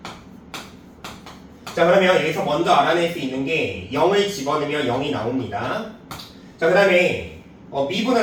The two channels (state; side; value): identical; both; correlation 1.00